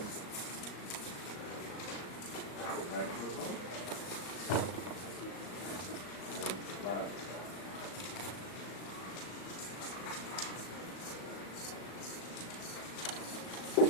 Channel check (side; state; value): right; late; 37 ms